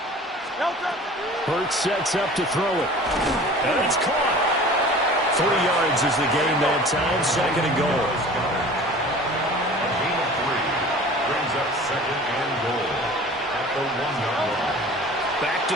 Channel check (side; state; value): both; normal; correlation 0.43